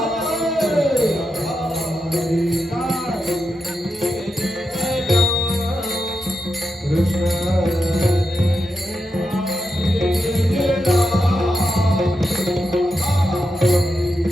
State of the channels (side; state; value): both; normal; correlation 0.87